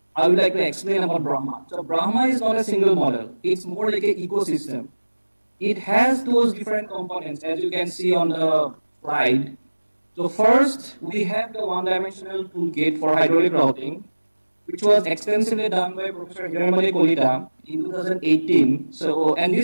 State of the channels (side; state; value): both; inverted; correlation -1.00